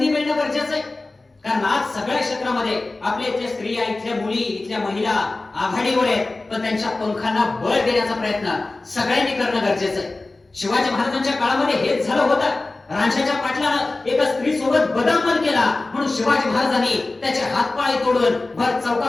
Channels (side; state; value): right; quieter; 3.2 dB